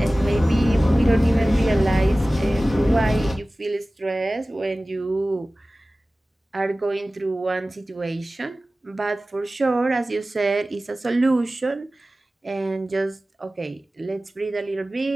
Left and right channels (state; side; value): normal; both; correlation 0.97